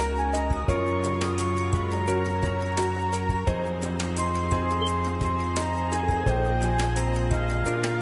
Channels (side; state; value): both; identical; correlation 1.00